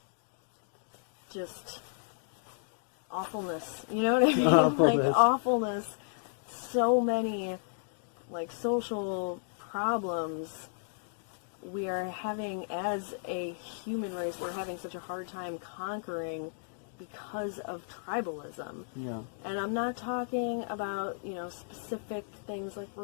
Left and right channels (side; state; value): right; silent; digital silence